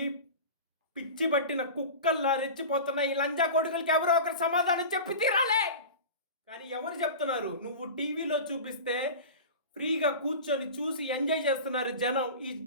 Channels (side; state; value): both; inverted; correlation -0.32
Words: పిచ్చి పట్టిన కుక్కల్లా రెచ్చిపోతున్న ఈ లంజా కొడుకులకి ఎవరో ఒకరు సమాధానం చెప్పి తీరాలే. కానీ ఎవరు చెప్తున్నారు? నువ్వు టీవీలో చూపిస్తే ఫ్రీగా కూర్చొని చూసి ఎంజాయ్ చేస్తున్నారు జనం. ఈ